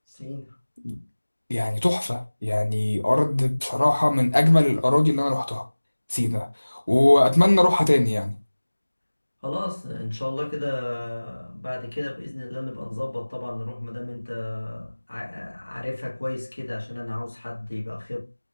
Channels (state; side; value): inverted; both; correlation -1.00